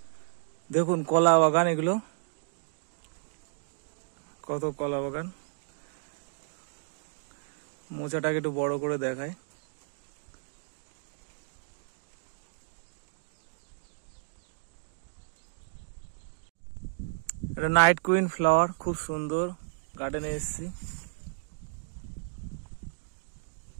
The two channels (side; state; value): left; silent; digital silence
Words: দেখুন কলা বাগান, এগুলো কত কলা বাগান। মোচাটাকে একটু বড় করে দেখায়। এটা নাইট কুইন ফ্লাওয়ার, খুব সুন্দর। গার্ডেনে এসেছি।